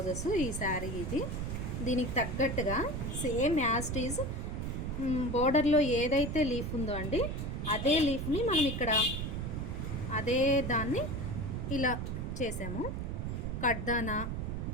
ఈ శారీ ఇది దీనికి తగ్గట్టుగా సేమ్ యాజ్ ఈజ్ బోర్డర్లో ఏదైతే లీఫ్ ఉందో అండి, అదే లీఫ్ని మనం ఇక్కడ అదే దాన్ని ఇలా చేసాము.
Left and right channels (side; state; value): right; noise; rumble, 3 dB below the sound